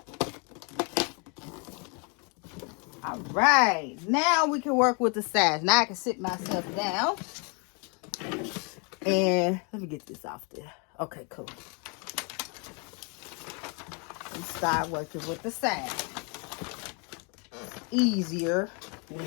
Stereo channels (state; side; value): quieter; right; 34.2 dB